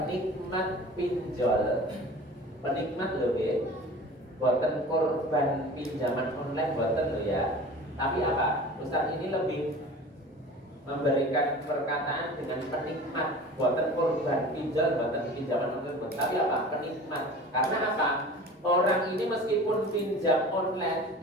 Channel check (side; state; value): both; normal; correlation 0.40